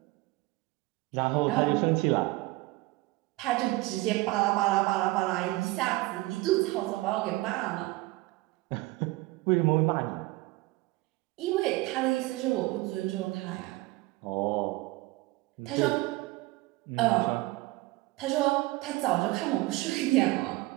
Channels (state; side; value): quieter; left; 20.4 dB